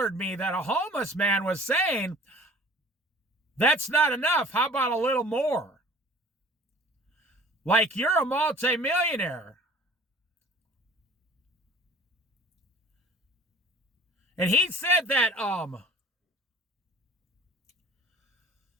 me that a homeless man was saying, that's not enough. How about a little more? Like you're a multimillionaire. And he said that,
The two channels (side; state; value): both; normal; correlation 0.47